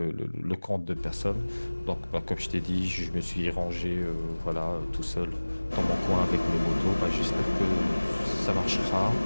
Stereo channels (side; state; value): both; inverted; correlation -1.00